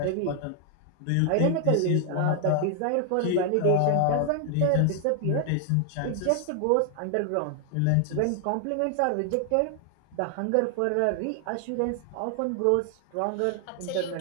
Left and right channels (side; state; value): both; different; correlation 0.00